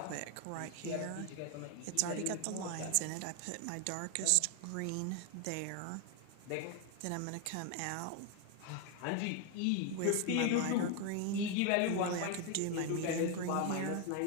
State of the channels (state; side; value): different; both; correlation 0.01